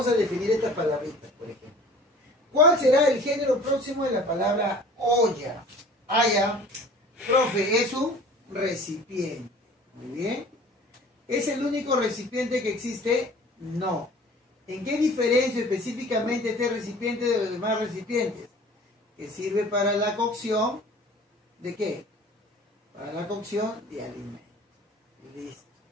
a definir estas palabritas, por ejemplo. ¿Cuál será el género próximo de la palabra olla? Ya. Profe, es un recipiente. Muy bien. ¿Es el único recipiente que existe? No. ¿En qué diferencia específicamente este recipiente de los demás recipientes? Que sirve para la cocción ¿de qué? Para la cocción de alimentos. Listo.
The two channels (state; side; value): normal; both; correlation 0.46